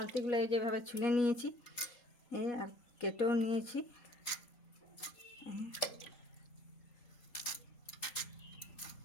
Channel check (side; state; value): right; late; 3.8 ms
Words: যেভাবে ছুলে নিয়েছি আর কেটেও নিয়েছি।